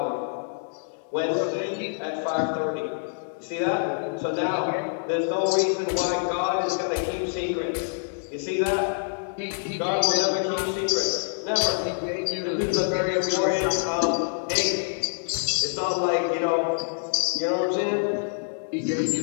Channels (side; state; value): right; silent; digital silence